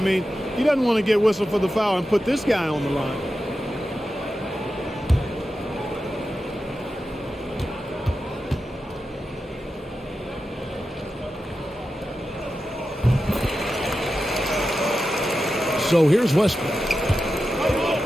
mean, he doesn't want to get whistled for the foul and put this guy on the line. So here's Westbrook.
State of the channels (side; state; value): both; normal; correlation 0.91